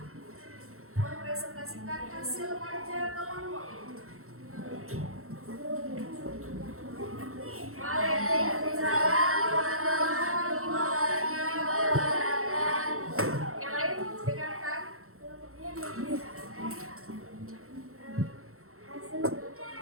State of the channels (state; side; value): late; left; 0.63 ms